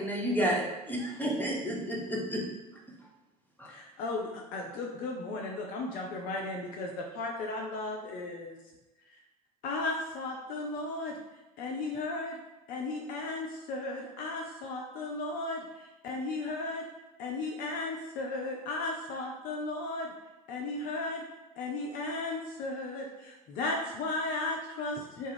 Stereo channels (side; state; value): both; normal; correlation 0.20